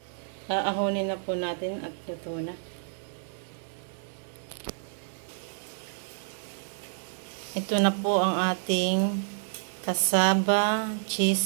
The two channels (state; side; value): silent; left; digital silence